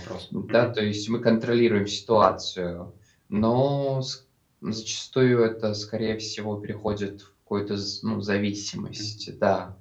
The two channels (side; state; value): both; identical; correlation 1.00